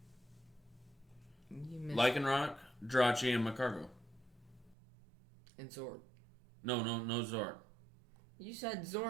You missed Lycanroc, Jirachi, and Macargo. And Zork. No Zork. You said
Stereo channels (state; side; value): drops out; left; at 4.8 s